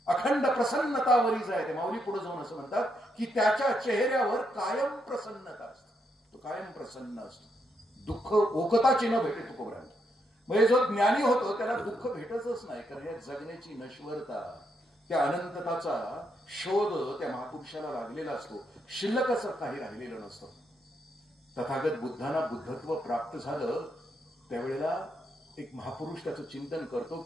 अखंड प्रसन्नता वरीच आहे. ते माऊली पुढे जाऊन असं म्हणतात की त्याच्या चेहऱ्यावर कायम प्रसन्नता असते, तो कायम प्रसन्न असतो. दुःख ओकताची न भेटे तुकोबरायांना. म्हणजे जो ज्ञानी होतो त्याला दुःख भेटतच नाही, कारण या जगण्याची नश्वरता, त्या अनंतताचा शोध त्या महापुरुषाला लागलेला असतो. शिल्लक असं काही राहिलेलं नसतं. तथागत बुद्धांना बुद्धत्व प्राप्त झालं त्यावेळेला एक महापुरुष त्याचं चिंतन करतो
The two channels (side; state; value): both; normal; correlation 0.79